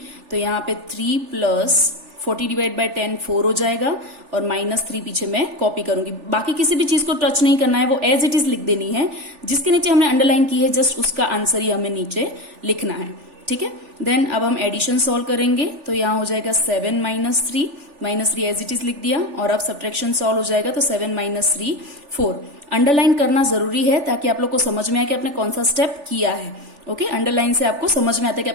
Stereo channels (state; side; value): late; left; 3.4 ms